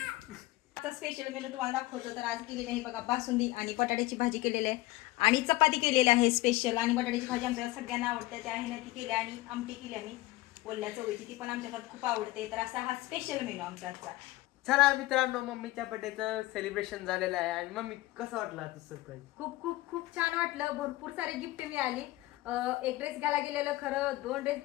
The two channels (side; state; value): right; quieter; 18.8 dB